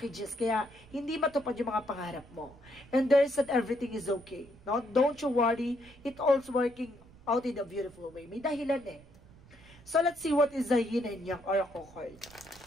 kaya hindi matupad yung mga pangarap mo. And there's that everything is okay. No, don't you worry. It all's working out in a beautiful way. May dahilan eh. So, let's see what is the yin and yang oracle card.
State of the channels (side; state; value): right; noise; rumble, 23 dB below the sound